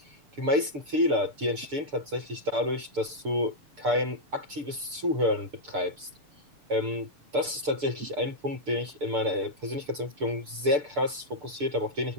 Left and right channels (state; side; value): late; left; 6.8 ms